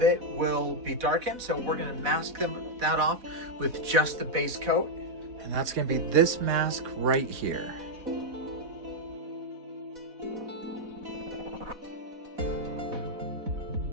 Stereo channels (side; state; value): left; late; 4.1 ms